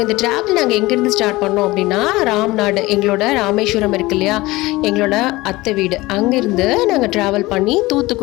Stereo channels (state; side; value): quieter; right; 20.0 dB